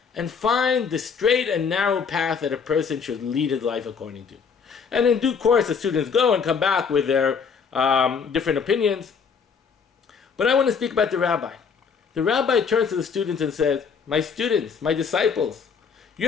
and find the straight and narrow path that a person should lead his life according to. And in due course, the students go and come back with their different opinions. But I want to speak about the rabbi. The rabbi turns to the students and says, my students, my disciples,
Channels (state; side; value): quieter; right; 6.0 dB